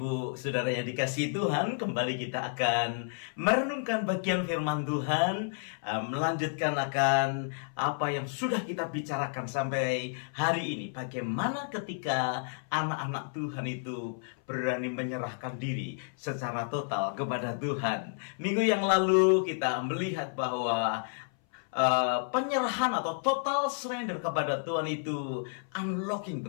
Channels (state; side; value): silent; right; 57 dB below the other